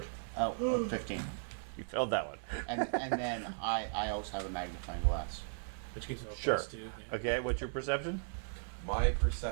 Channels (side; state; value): left; silent; digital silence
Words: Oh, 15. You failed that one. And then I also have a magnifying glass. Which gives me a Sure. plus 2. Yeah. Okay, what's your perception? My